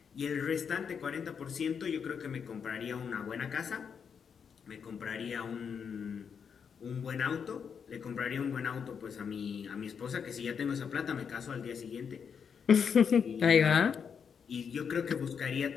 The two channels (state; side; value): quieter; right; 6.8 dB